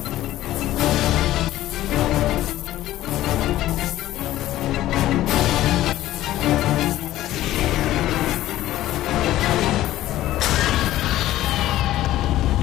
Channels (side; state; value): right; quieter; 14.6 dB